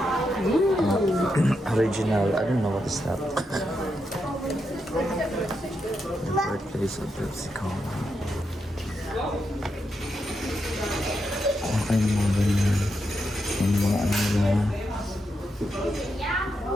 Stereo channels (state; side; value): normal; both; correlation 0.84